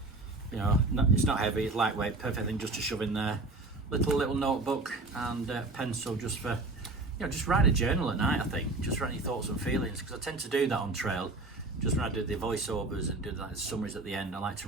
you know, it's not heavy. It's lightweight. Perfect thing just to shove in there. Little notebook and pencil just for, you know, just write a journal at night. I think just write your thoughts and feelings, because I tend to do that on trail. Just when I do the voiceovers and do the summaries at the end, I like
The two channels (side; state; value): left; quieter; 3.2 dB